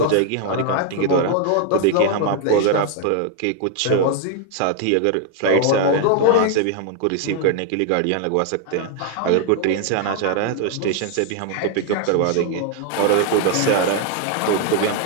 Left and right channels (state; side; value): different; both; correlation 0.00